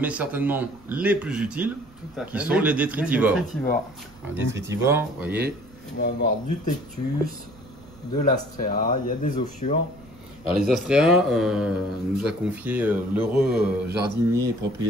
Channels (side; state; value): right; noise; rumble, 25 dB below the sound